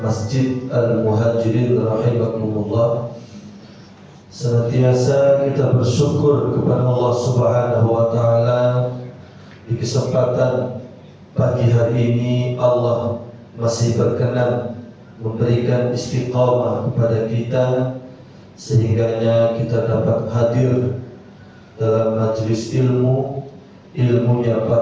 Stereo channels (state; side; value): identical; both; correlation 1.00